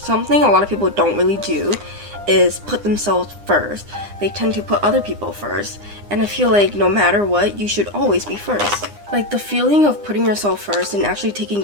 a lot of people don't really do is put themselves first. They tend to put other people first, and I feel like no matter what, you should always be first. Like, the feeling of putting yourself first and actually taking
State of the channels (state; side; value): late; left; 9.8 ms